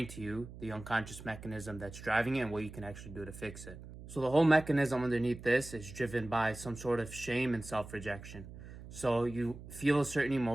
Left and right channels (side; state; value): right; noise; hum, 14 dB below the sound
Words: to you the unconscious mechanism that's driving it and what you can actually do to fix it. So the whole mechanism underneath this is driven by some sort of shame and self-rejection. So you feel a certain